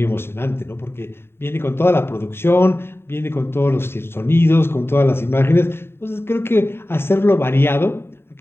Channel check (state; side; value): late; right; 0.11 ms